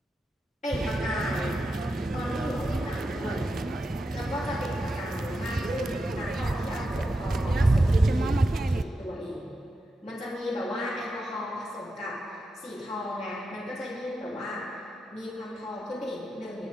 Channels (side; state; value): both; normal; correlation 0.88